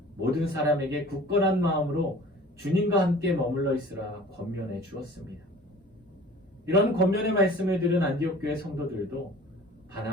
모든 사람에게 굳건한 마음으로 주님과 함께 머물러 있으라 권면해 주었습니다. 이런 권면의 말씀을 들은 안디옥 교회 성도들도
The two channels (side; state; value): both; normal; correlation 0.45